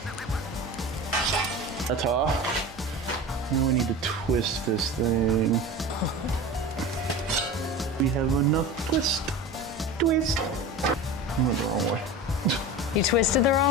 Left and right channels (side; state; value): both; normal; correlation 0.31